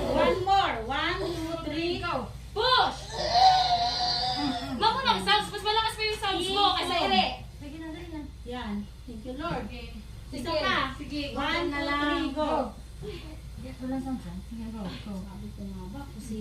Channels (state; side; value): identical; both; correlation 1.00